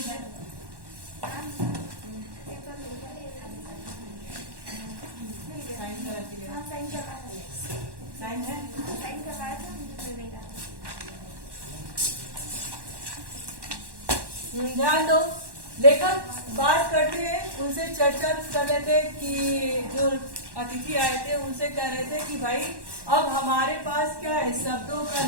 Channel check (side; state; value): left; late; 1.1 ms